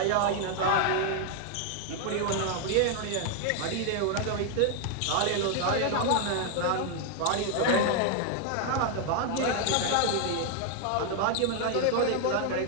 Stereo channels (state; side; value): different; both; correlation 0.00